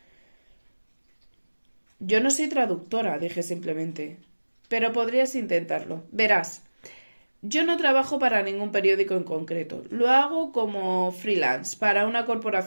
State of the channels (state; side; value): inverted; both; correlation -1.00